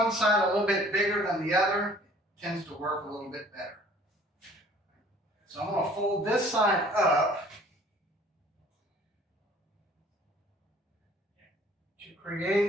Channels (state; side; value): normal; both; correlation 0.53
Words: side a little bit bigger than the other, it tends to work a little bit better. So I'm going to fold this side up to